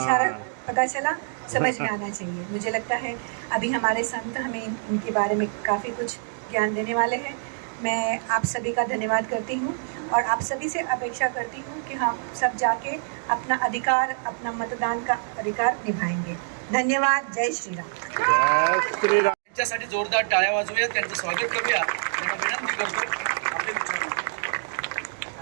पता चला, समझ में आना चाहिए। मुझे लगता है अभी हमारे संत हमें इनके बारे में काफ़ी कुछ ज्ञान देने वाले हैं। मैं आप सभी का धन्यवाद करती हूँ और आप सभी से अपेक्षा करती हूँ कि हम सब जाके अपना अधिकार, अपना मतदान का अधिकार निभाएंगे। धन्यवाद। जय श्री राम। जय श्री राम। त्यांच्यासाठी जोरदार टाळ्या वाजवूया, त्यांचं स्वागत करूया, त्यांना विनंती करतो आपले विचार।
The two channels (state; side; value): silent; left; digital silence